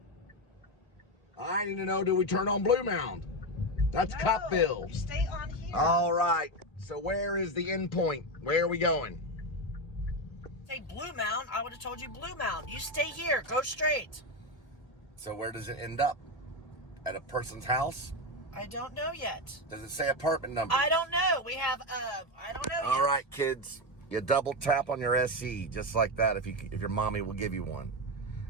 I need to know, do we turn on Blue Mound? That's Cupville. You stay on here. All right. So where is the end point? Where are we going? Say Blue Mound, I would have told you Blue Mound. You stay here. Go straight. So where does it end up? At a person's house? I don't know yet. Does it say apartment number? I don't know. We have, I don't know All yet. right, kids. You double tap on your SE, just like that, if your mommy will give you one.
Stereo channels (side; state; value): right; late; 1.8 ms